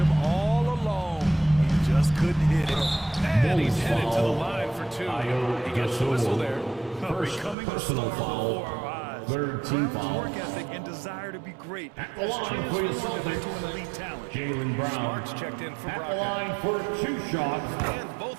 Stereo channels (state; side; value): drops out; left; at 7.6 s